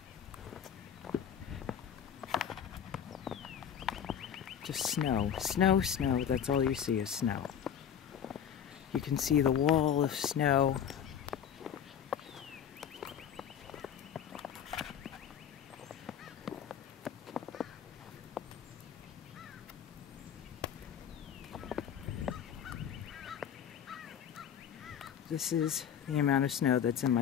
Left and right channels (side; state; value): right; quieter; 8.6 dB